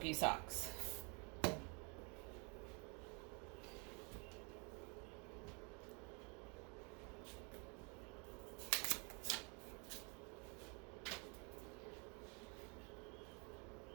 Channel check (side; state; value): left; quieter; 34.2 dB